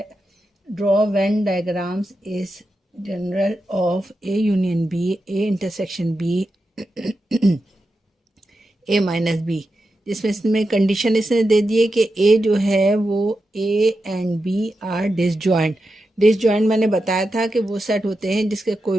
Venn diagrams is general of A union B, A intersection B, A minus B, जिसमें इसमें condition इसने दे दी है कि ए जो है वो A and B are disjoint. Disjoint मैंने बताया था कि वो सेट होते हैं जिसके कोई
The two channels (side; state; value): both; normal; correlation 0.89